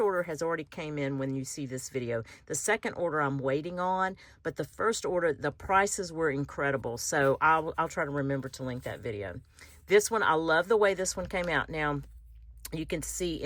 has already came in when you see this video. The second order I'm waiting on, but the first order, the prices were incredible. So I'll try to remember to link that video. This one, I love the way this one came out. Now, you can see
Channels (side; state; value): both; identical; correlation 1.00